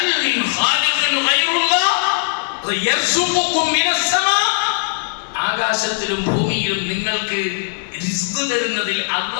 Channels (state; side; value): silent; right; 65 dB below the other